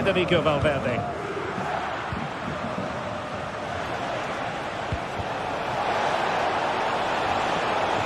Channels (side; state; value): both; identical; correlation 1.00